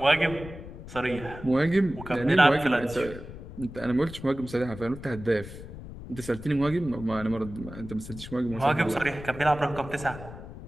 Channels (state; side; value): noise; left; rumble, 13 dB below the sound